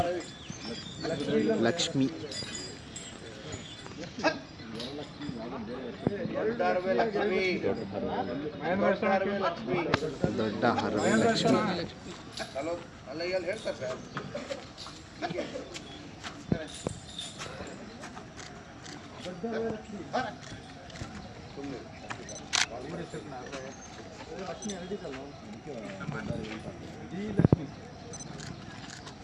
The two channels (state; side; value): identical; both; correlation 1.00